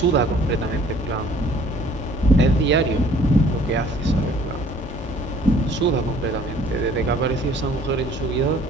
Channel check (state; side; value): normal; both; correlation 0.55